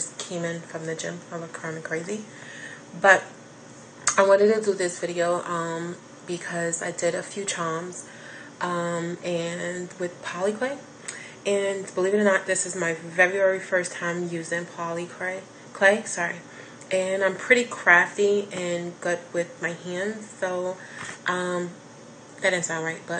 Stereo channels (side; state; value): both; identical; correlation 1.00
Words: came in from the gym. I look kind of crazy, but I wanted to do this video because I did a few charms. And with Polymer Clay, and believe it or not, this is my very first time using Polymer Clay, sorry, and I'm pretty crafty and good with my hands, so that didn't sound right,